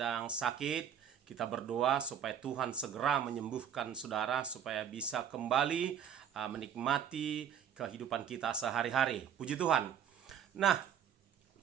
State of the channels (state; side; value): quieter; left; 8.6 dB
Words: sakit, kita berdoa supaya Tuhan segera menyembuhkan saudara, supaya bisa kembali menikmati kehidupan kita sehari-hari. Puji Tuhan. Nah,